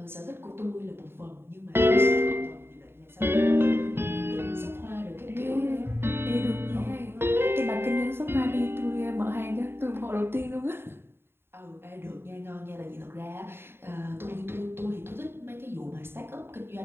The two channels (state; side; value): late; left; 0.11 ms